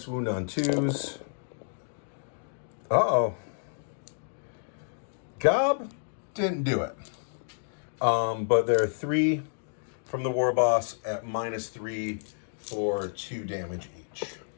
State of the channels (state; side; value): silent; right; digital silence